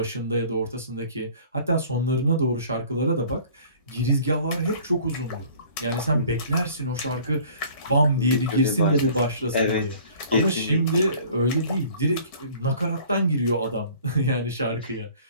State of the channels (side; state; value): both; inverted; correlation -0.50